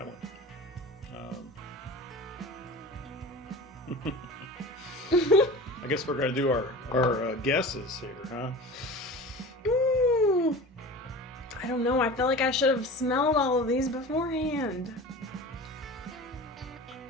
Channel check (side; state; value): both; normal; correlation 0.35